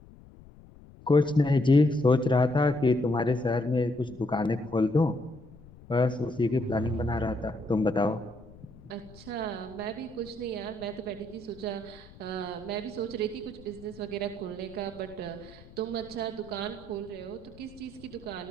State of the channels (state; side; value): noise; left; rumble, 21 dB below the sound